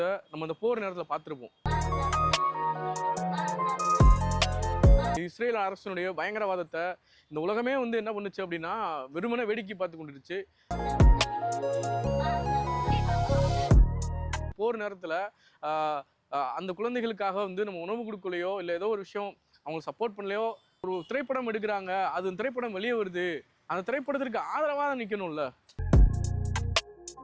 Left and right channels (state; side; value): identical; both; correlation 1.00